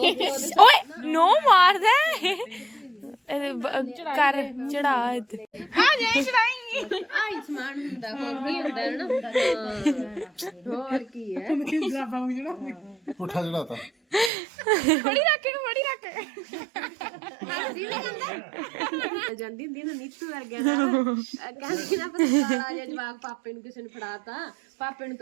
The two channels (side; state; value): left; drops out; at 14.3 s